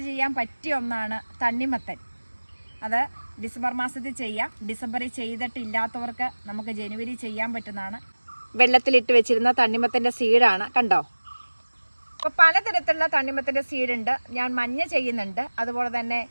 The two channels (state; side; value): inverted; both; correlation -1.00